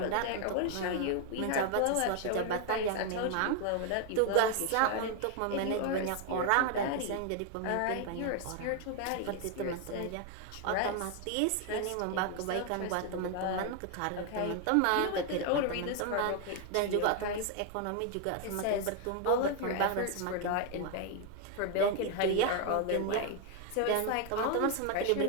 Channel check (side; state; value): both; different; correlation 0.01